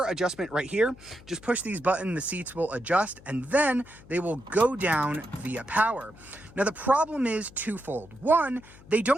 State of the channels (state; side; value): noise; left; hum, 22 dB below the sound